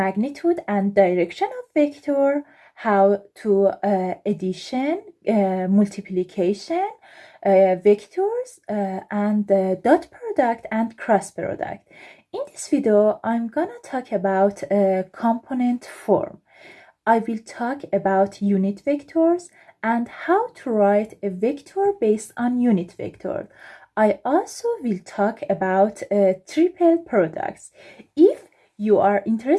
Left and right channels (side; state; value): both; identical; correlation 1.00